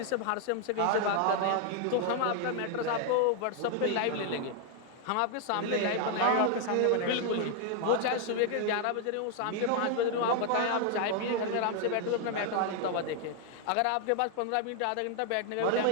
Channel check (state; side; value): different; both; correlation 0.00